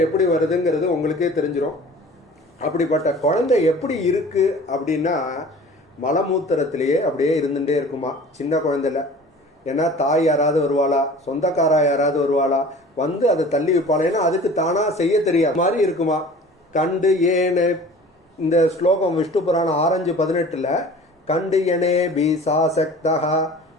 எப்படி வருதுங்கிறது உங்களுக்கே தெரிஞ்சிடும். அப்படிப்பட்ட குழந்தை எப்படி இருக்கு அப்படின்னா மலமூத்திரத்திலேயே அப்படியே இருந்துகிட்டே இருக்குமா, சின்ன குழந்தைல. ஏன்னா தாய் யாராவது வருவாளா, சொந்தக்காரா யாராவது வருவாளா, அதை தள்ளி வைப்பாளா, ஏன்னா அதுக்கு தானா செய்ய தெரியாத மாதிரி இருக்குமா. கண்டு ஏனே இந்த ஸ்லோகம் விஷ்ணு புராணம் 6:18 கண்டு எனே பீசாசக்தா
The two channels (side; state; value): both; normal; correlation 0.44